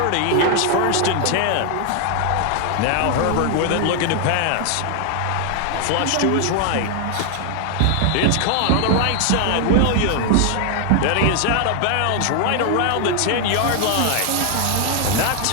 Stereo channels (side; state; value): both; different; correlation 0.00